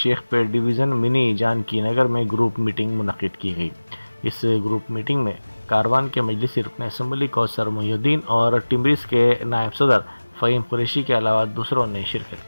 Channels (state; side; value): inverted; both; correlation -1.00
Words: डिवीज़न मिनी जानकी नगर में ग्रुप मीटिंग मुनक्किद की गई। इस ग्रुप मीटिंग में कारवान के मजलिसी रुकन असम्बली कौसर मोहिउद्दीन और टिम्बरिस के नायब सदर फ़हीम कुरैशी के अलावा दूसरों ने शिरकत